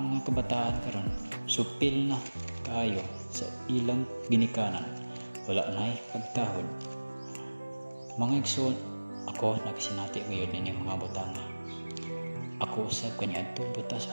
mga kabataan karon supil na kaayo sa ilang ginikanan, wala na'y pagtahod. Mga igsoon, ako nagsinati ngayon ini mga butanga. Ako usab kaniadto butas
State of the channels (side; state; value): both; inverted; correlation -1.00